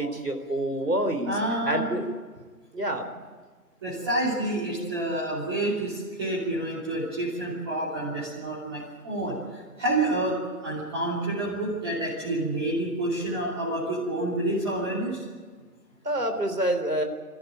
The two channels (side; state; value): both; normal; correlation 0.10